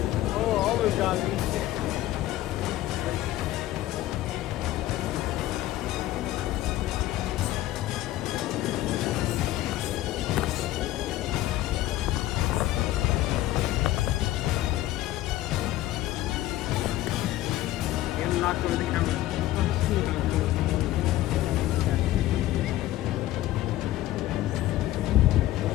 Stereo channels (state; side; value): quieter; right; 14.9 dB